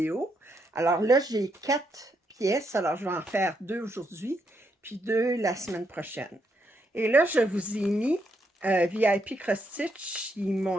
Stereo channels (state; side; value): normal; both; correlation 0.78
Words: Alors là, j'ai 4 pièces. Alors, je vais en faire 2 aujourd'hui, puis 2 la semaine prochaine. Et là, je vous ai mis VIP Cross Stitch. Ils